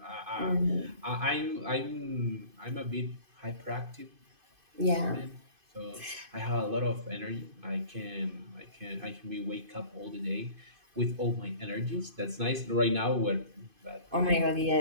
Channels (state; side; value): late; left; 2.5 ms